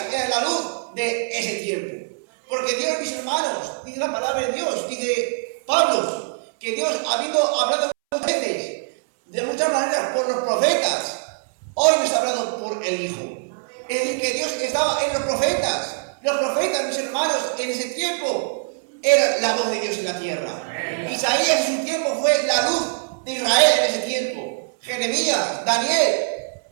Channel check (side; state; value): left; silent; 64 dB below the other